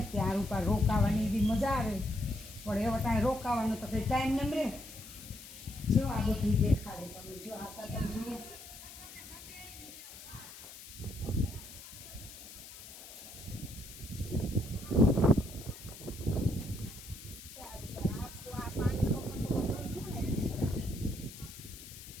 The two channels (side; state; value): left; noise; hiss, 15 dB below the sound